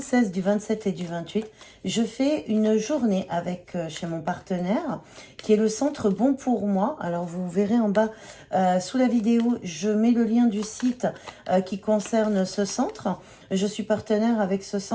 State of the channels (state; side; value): identical; both; correlation 1.00